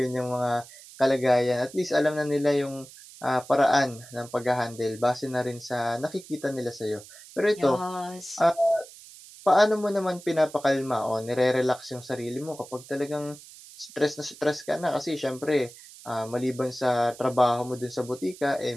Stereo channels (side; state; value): right; noise; hiss, 19 dB below the sound